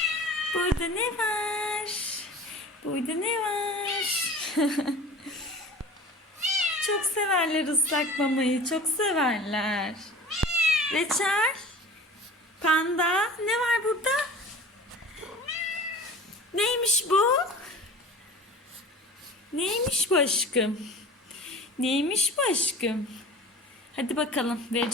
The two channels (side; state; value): both; normal; correlation 0.40